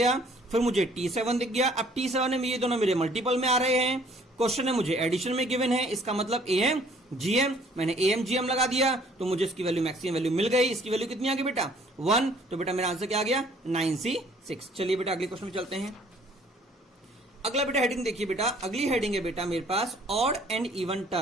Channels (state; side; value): normal; both; correlation 0.58